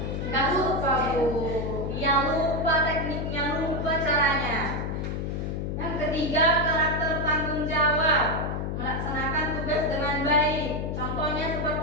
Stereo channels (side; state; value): left; noise; hum, 3 dB below the sound